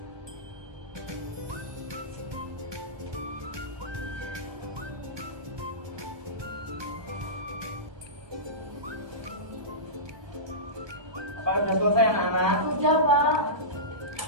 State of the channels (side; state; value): left; late; 1.2 ms